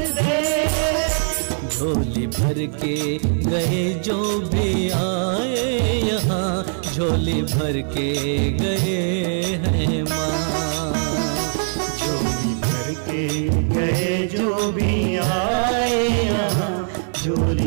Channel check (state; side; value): silent; left; digital silence